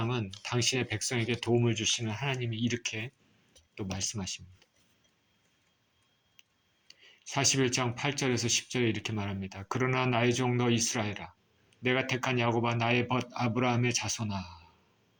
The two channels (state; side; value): identical; both; correlation 1.00